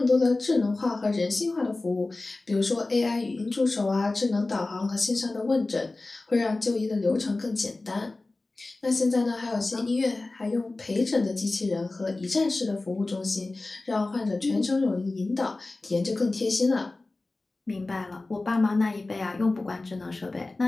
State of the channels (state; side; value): quieter; right; 3.2 dB